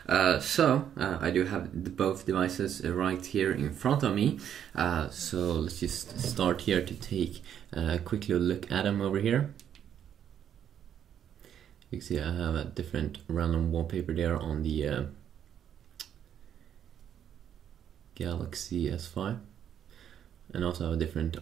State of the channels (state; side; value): quieter; left; 9.4 dB